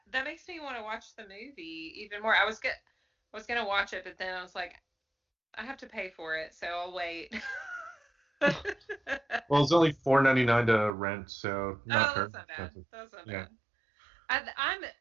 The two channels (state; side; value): drops out; left; at 10.9 s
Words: makes me want to watch the movie even more. I was gonna watch it, but then I was like, I have to pay for it, so I'll wait. Well, it's only $4.99 to rent, so not that's not bad. That's not bad.